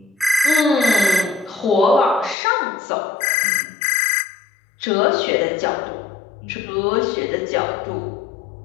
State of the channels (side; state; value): right; drops out; at 2.4 s